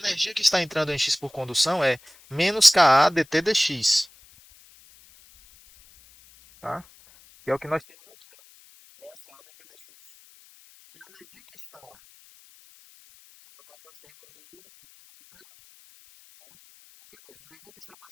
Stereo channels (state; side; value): noise; left; hiss, 28 dB below the sound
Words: que está entrando em X por condução é menos Ka dt dx. Tá? Que é o que nós temos aqui. Essa é a dt dx. E a energia que está